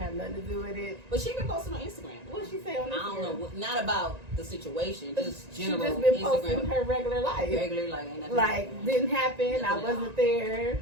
nothing to do with it. But she been posting on Instagram. What she say on Instagram? I don't know. Not about the situation. Just general. She just been Instagram. posting her regular life. Ain't nothing like, didn't happen. I wasn't there.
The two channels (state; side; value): late; left; 1.9 ms